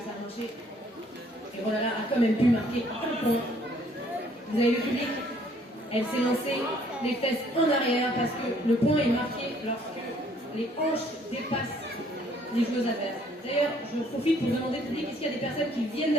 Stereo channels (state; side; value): normal; both; correlation 0.62